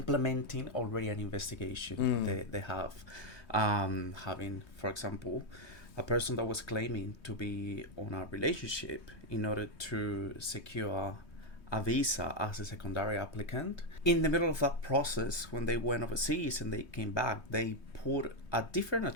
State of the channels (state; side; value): late; right; 3.2 ms